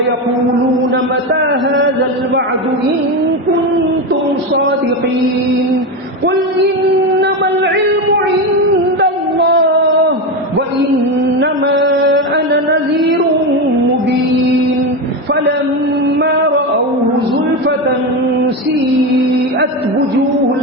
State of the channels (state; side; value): normal; both; correlation 0.15